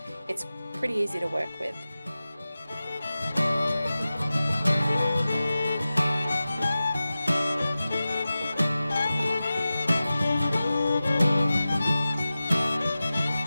It's pretty easy to work with.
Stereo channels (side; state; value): both; inverted; correlation -0.95